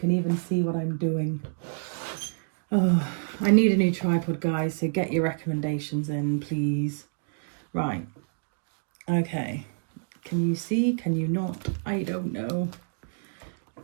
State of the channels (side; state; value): left; silent; digital silence